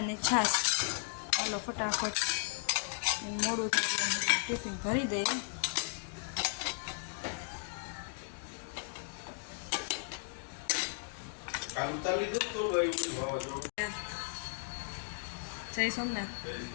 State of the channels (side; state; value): right; silent; 54 dB below the other